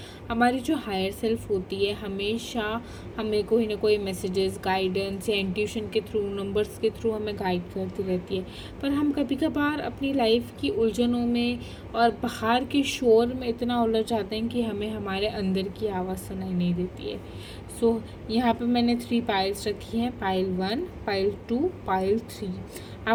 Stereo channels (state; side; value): identical; both; correlation 1.00